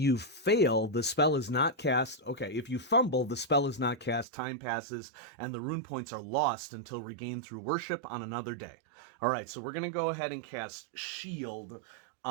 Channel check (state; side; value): drops out; left; at 4.2 s